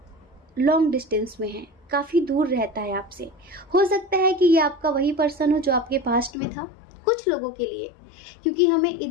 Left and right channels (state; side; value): drops out; right; at 6.3 s